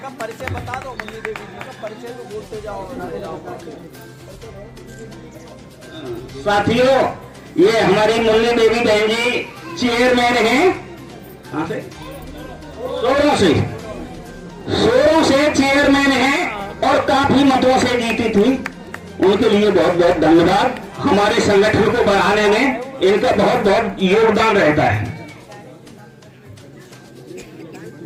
परिचय बता दो मुन्नी देवी जी का परिचय तो बोलते जाओ। साथियों, ये हमारी मुन्नी देवी बहन जी चेयरमैन हैं। कहां से? सोरों से चेयरमैन हैं और काफी मतों से जीती थी। उनके लिए बहुत बहुत धन्यवाद। हमारे संगठन को बढ़ाने में इनका बहुत बहुत योगदान रहता है।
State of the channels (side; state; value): both; identical; correlation 1.00